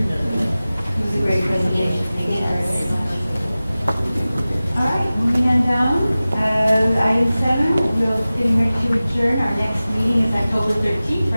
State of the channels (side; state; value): both; inverted; correlation -0.97